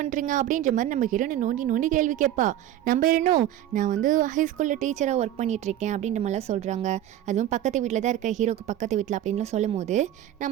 அப்படின்ற மாதிரி நம்ம ஹீரோனை நோண்டி நோண்டி கேள்வி கேட்பா. நம்ம ஹீரோனும் நான் வந்து ஹைஸ்கூலில் டீச்சராக ஒர்க் பண்ணிட்டு இருக்கேன் அப்படின்ற மாதிரிலாம் சொல்கிறாங்க. அதுவும் பக்கத்து வீட்டில் தான் இருக்க, ஹீரோக்கு பக்கத்து வீட்டில் அப்படின்லாம் சொல்லும் போது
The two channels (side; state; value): left; quieter; 12.4 dB